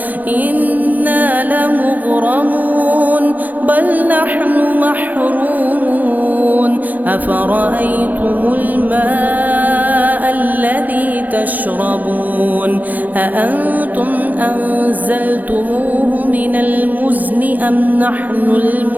إنا لمغرمون بل نحن محرومون أفرأيتم الماء الذي تشربون أأنتم أنزلتموه من المزن أم نحن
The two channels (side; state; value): left; late; 0.083 ms